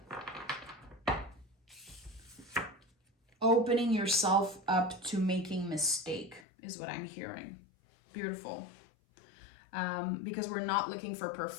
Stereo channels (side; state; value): right; drops out; at 6.5 s